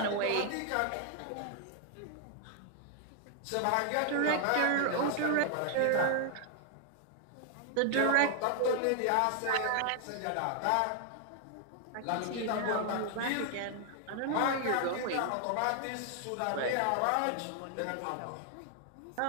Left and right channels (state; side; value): different; both; correlation 0.00